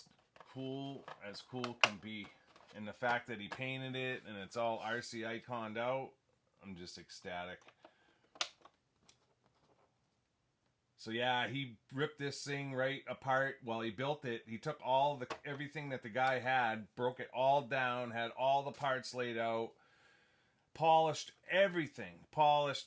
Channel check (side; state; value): both; identical; correlation 1.00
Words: cool as cool can be. And the fact that he painted it, and it's all RC iconed out, I'm just ecstatic. So yeah, he ripped this thing right apart while he built it. He took everything that the guy had, broke it all down, had all the parts laid out, polished everything. Polished